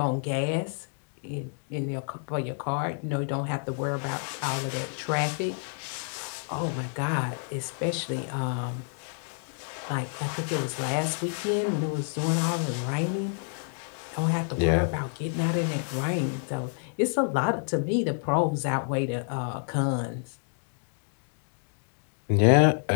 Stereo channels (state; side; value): silent; right; digital silence